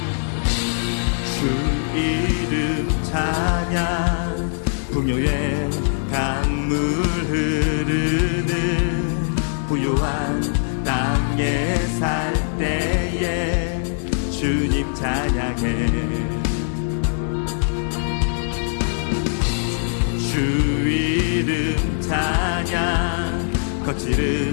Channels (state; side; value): silent; right; digital silence